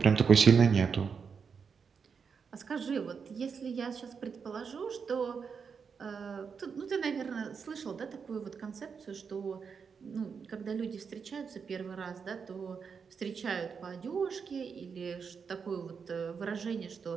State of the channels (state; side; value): quieter; left; 6.0 dB